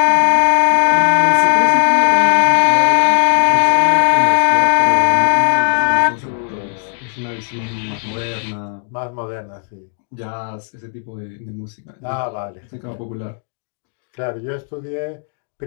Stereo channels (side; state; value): right; silent; 69 dB below the other